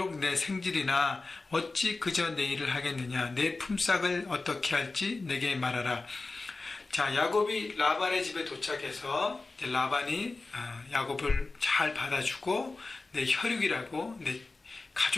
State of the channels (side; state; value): right; quieter; 3.5 dB